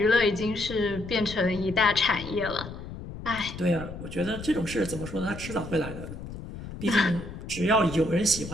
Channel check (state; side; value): noise; left; rumble, 11 dB below the sound